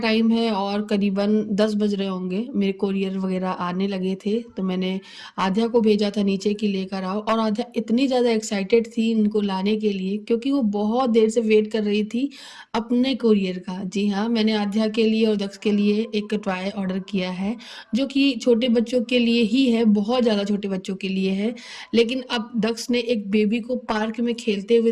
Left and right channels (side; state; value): both; identical; correlation 1.00